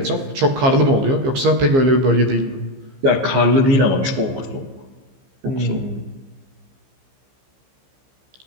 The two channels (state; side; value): late; left; 15 ms